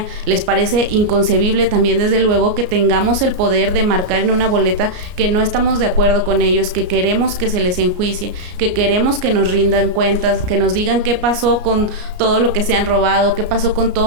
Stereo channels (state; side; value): late; left; 34 ms